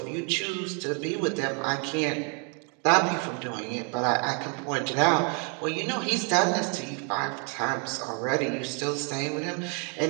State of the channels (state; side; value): quieter; left; 37.5 dB